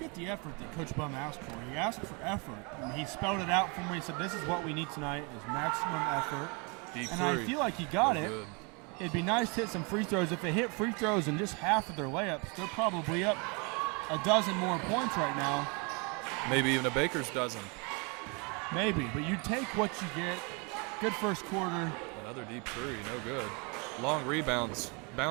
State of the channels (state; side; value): quieter; left; 31.8 dB